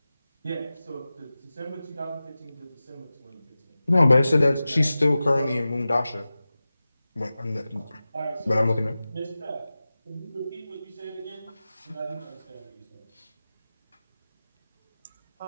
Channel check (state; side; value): inverted; both; correlation -0.96